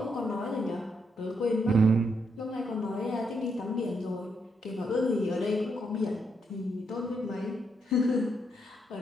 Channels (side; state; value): both; normal; correlation 0.78